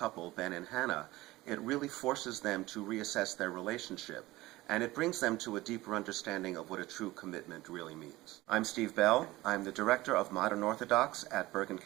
Ben and Hannah, it really forces them to reassess their relationship, and it brings them to a deeper understanding of what a true commitment really means. I'm Steve Bell. I'm the director of Modern Orthodox at Bergen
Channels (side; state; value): left; quieter; 18.6 dB